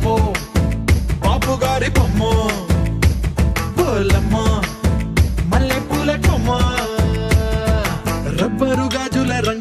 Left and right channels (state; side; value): identical; both; correlation 1.00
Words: బాపు గారి బొమ్మ, పోలమ్మ మల్లె పూల కొమ్మ, రబ్బరు గాజుల